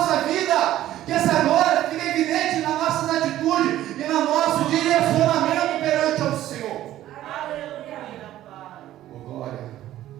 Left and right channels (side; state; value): left; quieter; 13.5 dB